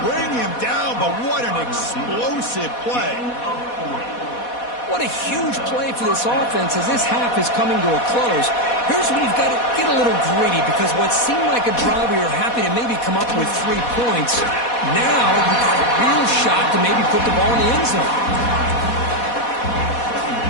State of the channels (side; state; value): right; late; 4.1 ms